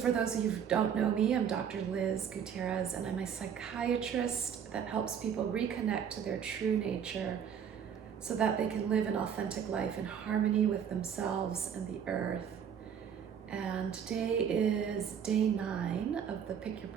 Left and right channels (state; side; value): quieter; left; 8.0 dB